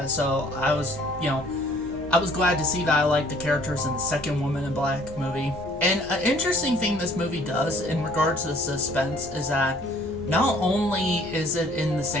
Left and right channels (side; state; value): both; normal; correlation 0.58